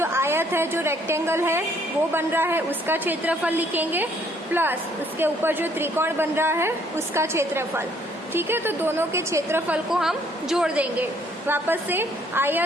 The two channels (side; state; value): both; normal; correlation 0.64